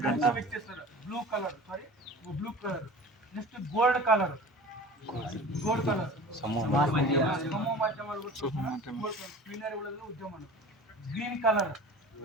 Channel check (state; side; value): normal; both; correlation 0.39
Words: ವ್ಯಕ್ತಿ sir, blue colour, sorry blue colour. Next gold colour, gold colour ಸಮೂಹ ಮಾಧ್ಯಮ ಉದ್ಯಮ. Green colour,